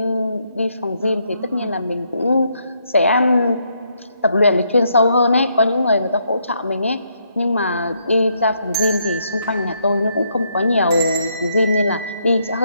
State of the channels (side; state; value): both; inverted; correlation -0.75